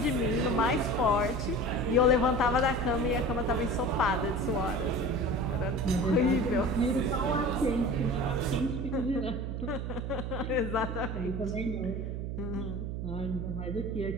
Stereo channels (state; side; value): noise; right; hum, 4 dB below the sound